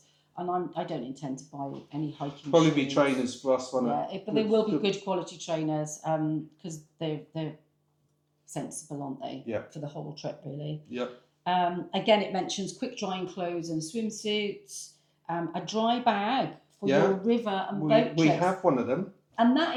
and I don't intend to buy any hiking shoes. Probably be trainers for us, won't it? But they will be good quality trainers because they're sensible, aren't they? Yeah. For the whole trip, really. Yep. Again, it mentions quick drying clothes and swimsuits, a dry bag for your river and boat trips. We have one of them. And that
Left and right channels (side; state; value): both; identical; correlation 1.00